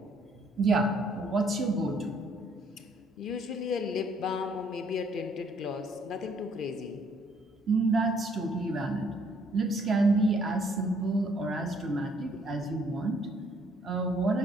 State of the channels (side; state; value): both; normal; correlation 0.65